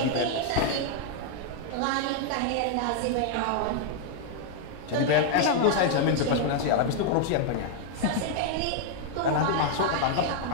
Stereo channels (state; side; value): different; both; correlation 0.00